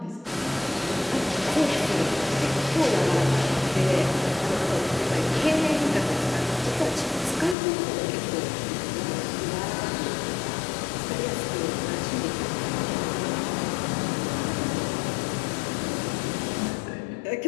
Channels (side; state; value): right; drops out; at 7.6 s